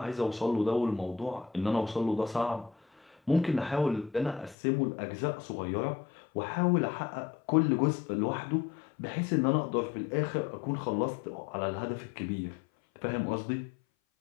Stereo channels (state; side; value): drops out; right; at 4.5 s